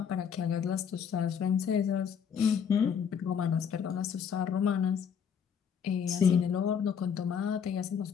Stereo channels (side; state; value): right; quieter; 7.4 dB